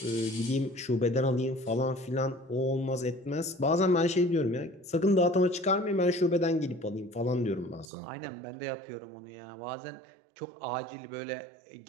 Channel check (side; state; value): left; drops out; at 7.9 s